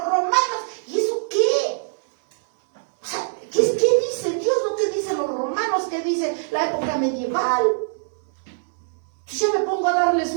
romanos. ¿Y eso qué? O sea, ¿qué dice Dios? ¿No qué dicen los romanos? ¿Qué dice la época medieval? Entonces ya me pongo a darles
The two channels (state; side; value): silent; left; 61 dB below the other